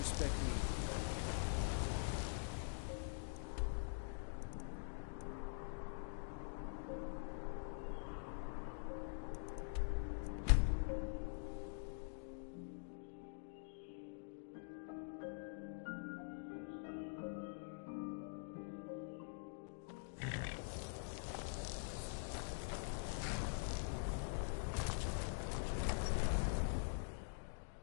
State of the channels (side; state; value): right; silent; digital silence